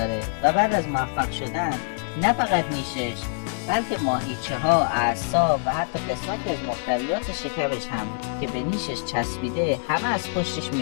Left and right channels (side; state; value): right; silent; 62 dB below the other